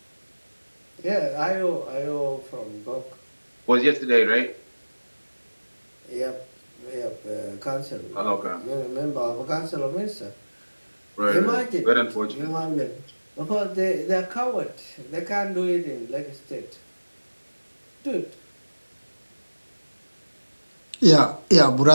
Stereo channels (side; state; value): both; inverted; correlation -1.00